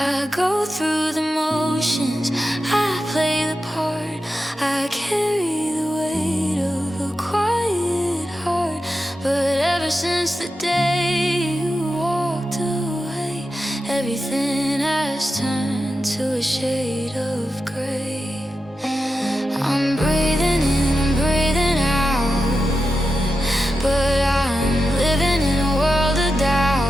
go through the motions, I play the part, I carry the weight of a quiet heart. But ever since the day you walked away, everything has turned to a shade of gray. I'm breathing in, I'm breathing out, but I'm living in a world of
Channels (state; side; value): normal; both; correlation 0.90